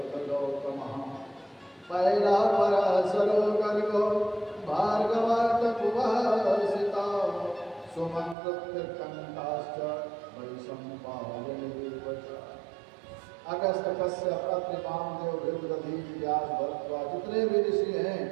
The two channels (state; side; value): drops out; left; at 8.3 s